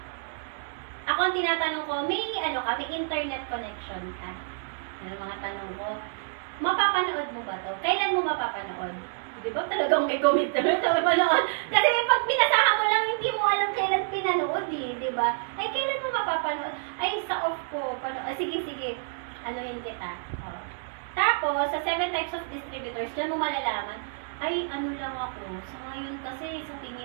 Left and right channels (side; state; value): left; silent; digital silence